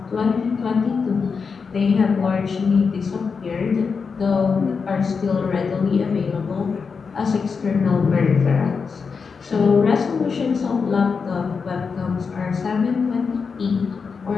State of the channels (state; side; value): quieter; right; 5.4 dB